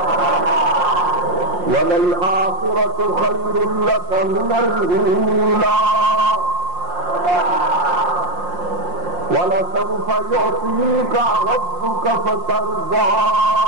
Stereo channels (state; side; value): late; left; 5.6 ms